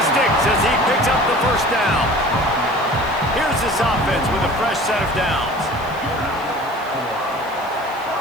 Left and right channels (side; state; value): right; noise; hiss, 24 dB below the sound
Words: sticks as he picks up the first down. Here's leads this offense with a fresh set of downs.